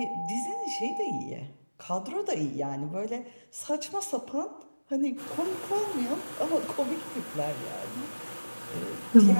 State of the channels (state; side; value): inverted; both; correlation -1.00